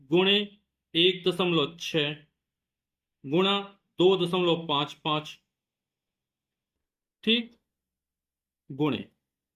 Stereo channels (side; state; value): both; identical; correlation 1.00